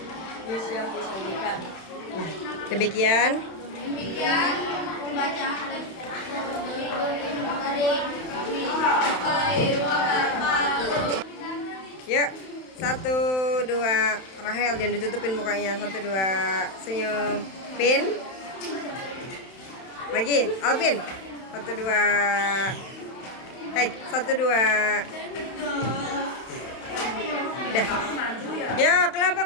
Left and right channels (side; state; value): right; late; 31 ms